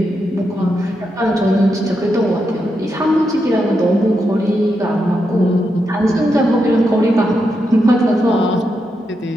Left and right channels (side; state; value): both; normal; correlation 0.84